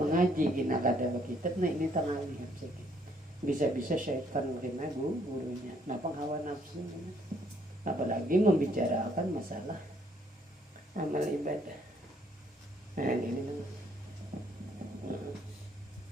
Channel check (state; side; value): normal; both; correlation 0.67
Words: mengaji gina kada kitab, nah ini tangalih sedikit. Bisa-bisa syaitan kena gurunya. Napang hawa nafsu. Apalagi membicarakan masalah amal ibadah. Nah, ini